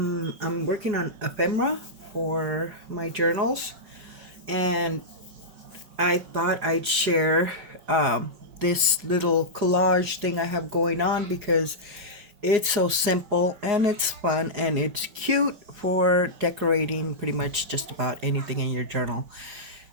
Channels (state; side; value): late; left; 5.3 ms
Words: working on ephemera for my journals, and I thought I'd share this little collage thing I have going on because it's so simple and it's fun and it's cute for decorating pretty much just about anything in your journal.